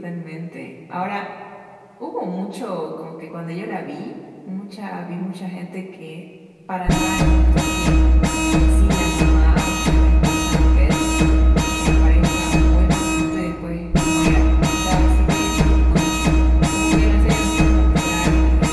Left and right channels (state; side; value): identical; both; correlation 1.00